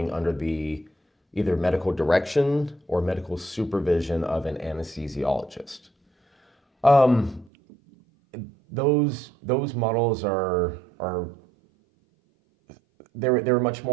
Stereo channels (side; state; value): left; drops out; at 7.5 s